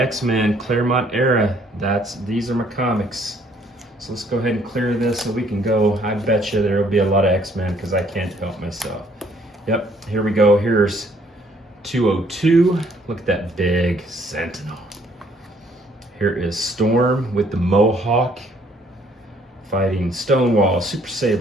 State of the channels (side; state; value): both; normal; correlation 0.63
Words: Claremont era. These are my comics. So let's go ahead and clear this so we can go. I bet you there will be a lot of X-Men because I can't help myself. Yep, here we go. Here's 202. Look at that big Sentinel. Here is Storm with the Mohawk fighting Stonewall, Super